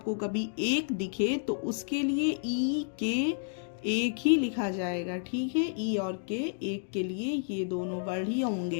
कभी एक दिखे तो उसके लिए ई के एक ही लिखा जाएगा। ठीक है, ई और के एक के लिए ये दोनों वर्ड ही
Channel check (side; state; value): right; silent; digital silence